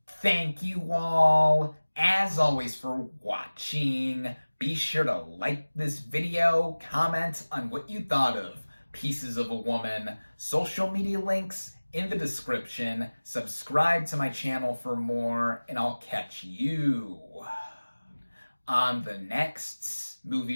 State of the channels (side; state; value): both; inverted; correlation -1.00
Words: Thank you all, as always, for watching. Be sure to like this video, comment on what you thought of Pieces of a Woman, social media links in the description, subscribe to my channel for more, and I'll catch you on the next